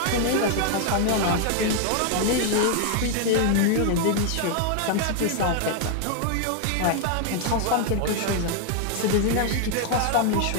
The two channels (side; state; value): both; different; correlation 0.00